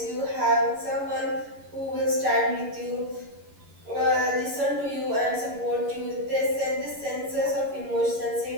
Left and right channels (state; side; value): late; left; 11 ms